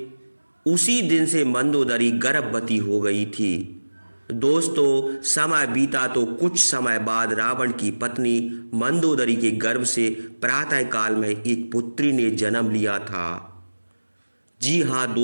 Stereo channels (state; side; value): inverted; both; correlation -1.00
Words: उसी दिन से मंदोदरी गर्भवती हो गई थी। दोस्तों समय बीता तो कुछ समय बाद रावण की पत्नी मंदोदरी के गर्भ से प्रातः काल में एक पुत्री ने जन्म लिया था। जी हाँ